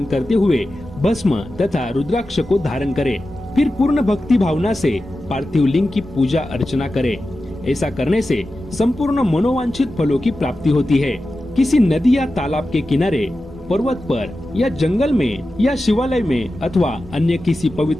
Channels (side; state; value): both; normal; correlation 0.93